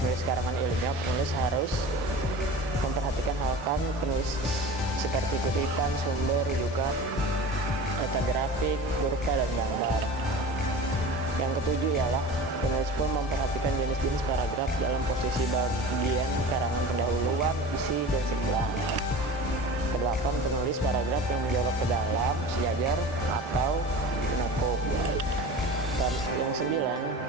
karangan ilmiah, penulis harus memperhatikan hal penulis seperti kutipan, sumber, rujukan, data grafik, kurva, dan gambar. Yang ketujuh ialah penulis pun memperhatikan jenis-jenis paragraf dalam posisi bagian karangan pendahuluan, isi, dan sebelah. Kedelapan, penulis paragraf yang menjawab ke dalam, sejajar, atau penutup. Yang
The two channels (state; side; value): normal; both; correlation 0.35